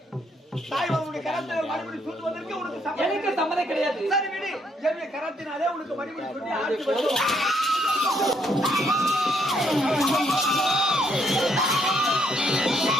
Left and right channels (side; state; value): both; normal; correlation 0.71